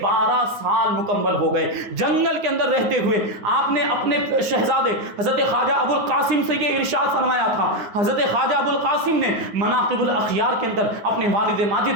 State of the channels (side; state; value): left; late; 9.8 ms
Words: 12 سال مکمل ہو گئے۔ جنگل کے اندر رہتے ہوئے آپ نے اپنے شہزادے حضرت خواجہ ابو القاسم سے یہ ارشاد فرمایا تھا۔ حضرت خواجہ ابو القاسم نے مناقب الاخیار کے اندر اپنے والد